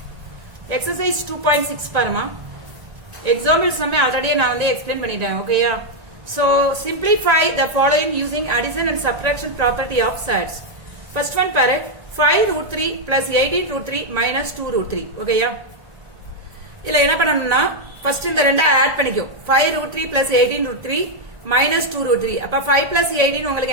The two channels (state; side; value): late; left; 1.9 ms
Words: exercise 2.6 பாருமா example sum already நான் வந்து explain பண்ணிட்டேன் ஓகேயா so simplify the following using addition and subtraction property of sets first one பாரு 5 root 3 plus 18 root 3 minus 2 root 3 ஓகேயா இல்ல என்ன பண்ணனும்னா ஃபர்ஸ்ட் இந்த ரெண்டை ஆட் பண்ணிக்கோ 5 root 3 plus 18 root 3 minus 2 root 3 அப்ப 5 plus 18